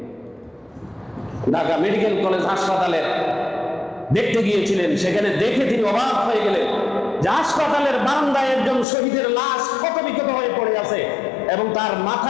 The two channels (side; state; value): right; drops out; at 8.8 s